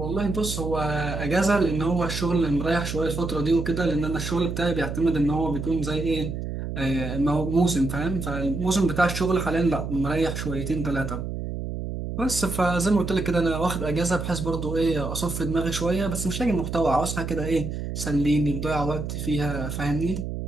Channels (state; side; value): noise; right; hum, 5 dB below the sound